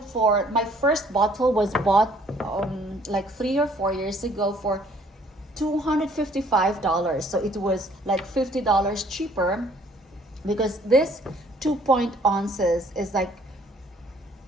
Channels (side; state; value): both; normal; correlation 0.60